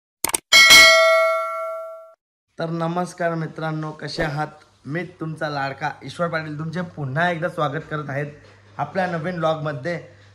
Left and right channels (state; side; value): identical; both; correlation 1.00